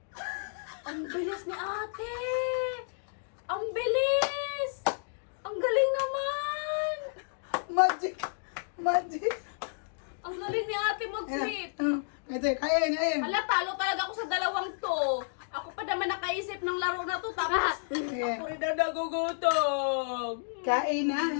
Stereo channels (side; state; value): right; silent; digital silence